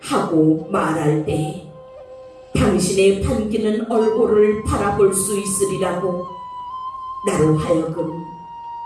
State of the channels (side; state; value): both; identical; correlation 1.00